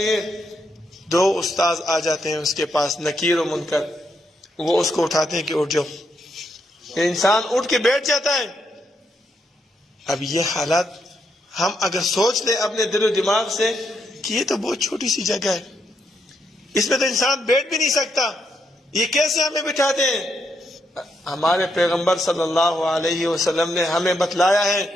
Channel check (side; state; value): both; normal; correlation 0.79